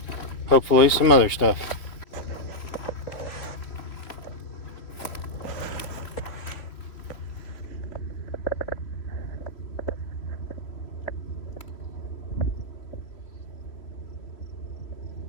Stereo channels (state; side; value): late; right; 3.1 ms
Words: Hopefully some other stuff.